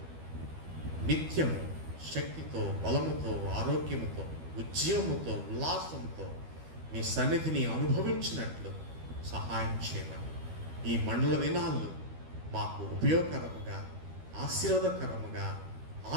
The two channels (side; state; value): left; late; 12 ms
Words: నిత్యము శక్తితో, బలముతో, ఆరోగ్యముతో, ఉద్యమముతో, ఉల్లాసంతో మీ సన్నిధిని అనుభవించినట్లు సహాయం చేయమని ఈ మండల దినాల్లో మాకు ఉపయోగకరముగా, ఆశీర్వాదకరముగా,